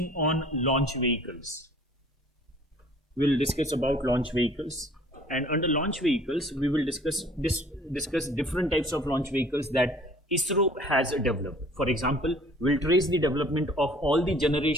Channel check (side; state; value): both; normal; correlation 0.52